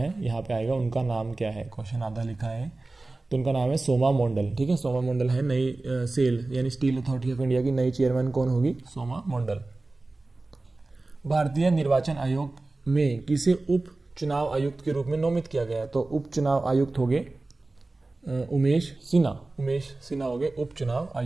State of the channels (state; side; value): quieter; left; 3.2 dB